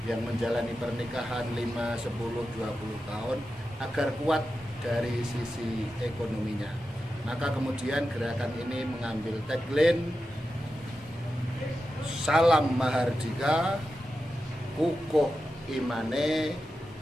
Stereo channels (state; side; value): normal; both; correlation 0.91